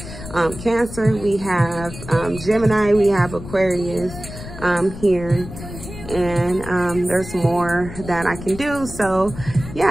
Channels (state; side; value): noise; left; rumble, 12 dB below the sound